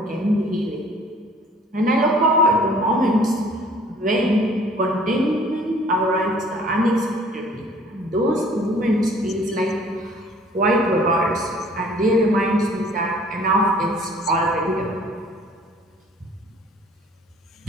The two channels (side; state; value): both; normal; correlation 0.54